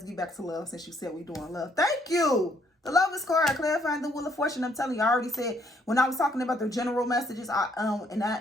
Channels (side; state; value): both; normal; correlation 0.69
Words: get back to love since you said we're doing love. Thank you. The Lovers card, clarifying the Wheel of Fortune. I'm telling you, I already said when I was talking about the general messages, and